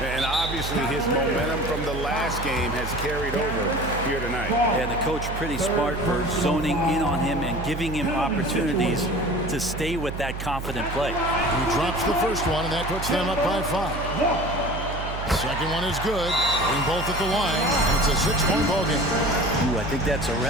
obviously his momentum from the last game has carried over here tonight. And the coach pretty smart for zoning in on him and giving him opportunities to stay with that confident play. He drops the first one, and that puts them up by 5. Second one is good. Being both at the line, and it's a 6-point ball game. Ooh, I think that's a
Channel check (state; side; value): noise; right; hum, 7 dB below the sound